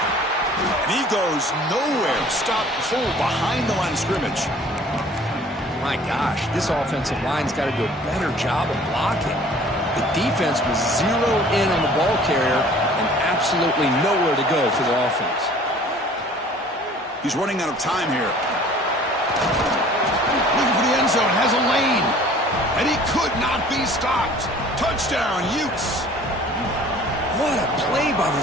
And he goes nowhere. Stop pull behind the line of scrimmage. My gosh, this offensive line's got to do a better job of blocking. The defense was zeroed in on the ball carrier and absolutely nowhere to go for the offense. He's running out of time here. Looking for the end zone. Has a lane. And he could not be stopped. Touchdown, Utes. What a play by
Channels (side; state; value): both; normal; correlation 0.51